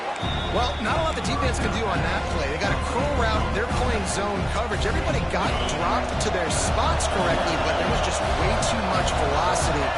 Well, not a lot the defense can do on that play. They got a curl route. They're playing zone coverage. Everybody got dropped to their spots correctly, but there was just way too much velocity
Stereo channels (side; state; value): both; identical; correlation 1.00